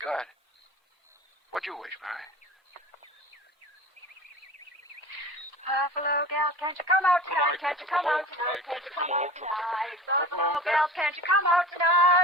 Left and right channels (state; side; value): normal; both; correlation 0.37